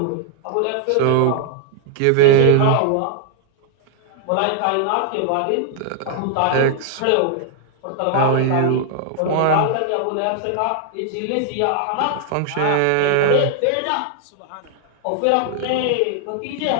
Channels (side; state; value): both; different; correlation 0.00